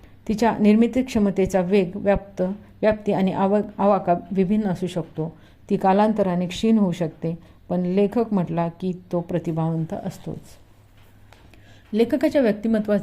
तिच्या निर्मिती क्षमतेचा वेग, व्याप्ती आणि आवाका विभिन्न असू शकतो. ती कालांतराने क्षीण होऊ शकते, पण लेखक म्हटला की तो प्रतिभावंत असतोच. लेखकाच्या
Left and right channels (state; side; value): identical; both; correlation 1.00